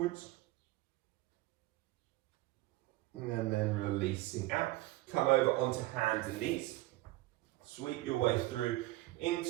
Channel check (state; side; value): quieter; left; 18.0 dB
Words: And then releasing out. Come over onto hands and knees. Sweep your way through